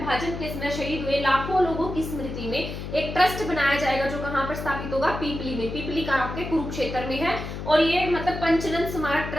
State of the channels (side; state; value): left; noise; hum, 7 dB below the sound